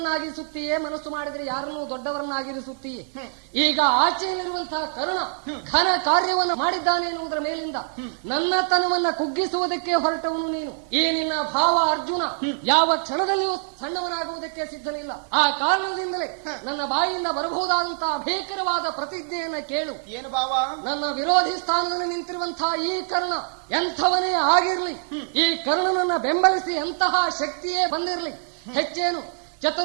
ಮನಸ್ಸು ಮಾಡಿದರೆ ಯಾರನ್ನೂ ದೊಡ್ಡವರನ್ನಾಗಿರಿಸುತ್ತೀಯೇ. ಈಗ ಆಚೆಯಲ್ಲಿರುವಂತಹ ಕರ್ಣ ಘನ ಕಾರ್ಯವನ್ನು ಮಾಡಿದ್ದಾನೆ ಎನ್ನುವುದರ ಮೇಲಿಂದ ನನ್ನತನವನ್ನ ಕುಗ್ಗಿಸುವುದಕ್ಕೆ ಹೊರಟವನು ನೀನು. ಈ ನಿನ್ನ ಭಾವ ಅರ್ಜುನ ಯಾವ ಕ್ಷಣದಲ್ಲಿಯೂ ಸಣ್ಣವನಾಗುವುದಕ್ಕೆ ಸಿದ್ಧನಿಲ್ಲ. ಆ ಕಾರಣದಿಂದಲೇ ನನ್ನ ಬಾಯಿಯಿಂದ ಬರಬಹುದಾದಂತಹ ಭೀಕರವಾದ ಪ್ರತಿಜ್ಞೆಯನ್ನ ಕೇಳು. ಏನು ಭಾವ? ನನ್ನ ವಿರೋಧಿ ಸ್ಥಾನದಲ್ಲಿ ನಿಂತಿರುವಂತಹ ಈ ಕರ್ಣ ಎಂಥವನೇ ಆಗಿರ್ಲಿ, ಈ ಕರ್ಣನನ್ನ ಬೆಂಬಲಿಸಿ ಎಂತಹ ಶಕ್ತಿಯೇ ಬಂದಿರಲಿ, ಹೆಚ್ಚೇನು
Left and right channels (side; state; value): left; silent; digital silence